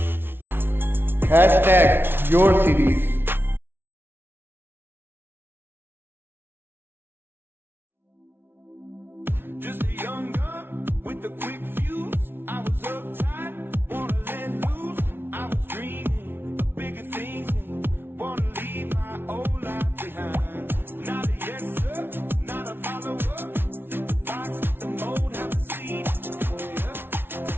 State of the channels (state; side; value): late; left; 0.11 ms